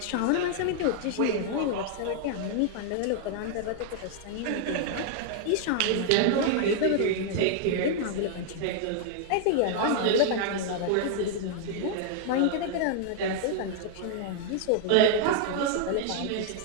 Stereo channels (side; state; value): both; different; correlation 0.00